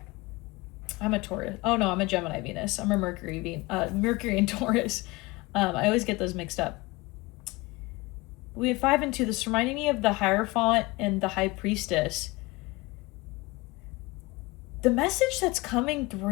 I'm a Taurus. Oh no, I'm a Gemini Venus. I'm a Mercury and Taurus. I always get those mixed up. We have 5 and 2. This reminding me of the Hierophant and the High Priestess. The message that's coming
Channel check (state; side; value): quieter; right; 22.9 dB